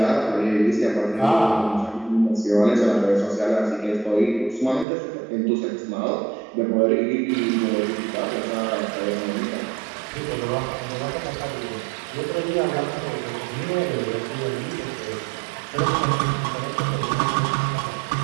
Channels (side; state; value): left; drops out; at 4.9 s